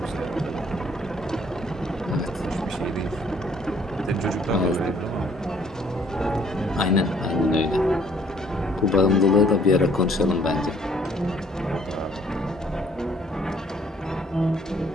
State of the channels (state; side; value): normal; both; correlation 0.61